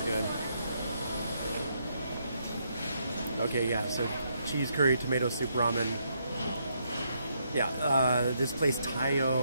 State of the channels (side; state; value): both; inverted; correlation -0.76